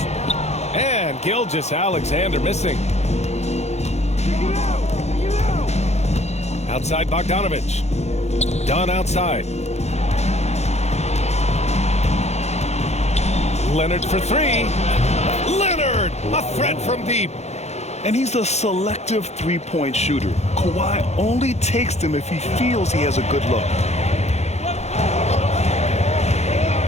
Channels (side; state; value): right; late; 0.32 ms